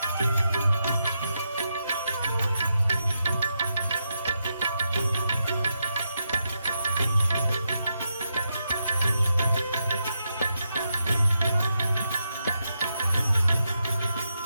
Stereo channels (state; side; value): inverted; both; correlation -0.84